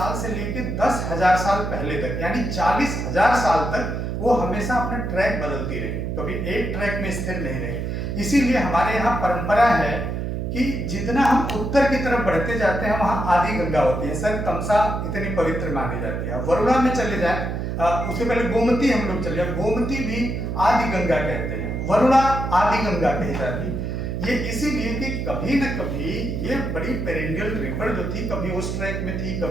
से लेकर 10,000 साल पहले तक यानी 40,000 साल तक वो हमेशा अपना ट्रैक बदलती रही, कभी एक ट्रैक में स्थिर नहीं रही। इसीलिए हमारे यहाँ परंपरा है कि जितना हम उत्तर की तरफ बढ़ते जाते हैं वहां आदि गंगा होती है। सर तमसा इतनी पवित्र मानी जाती है। वरुणा में चले जाए, उससे पहले गोमती हम लोग चले जाए, गोमती भी आदि गंगा कहते हैं, वरुणा आदि गंगा कही जाती। ये इसीलिए कि कभी न कभी ये बड़ी पेरेंडियल रिवर जो थी, कभी उस ट्रैक में थी,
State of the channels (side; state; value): right; noise; hum, 3 dB below the sound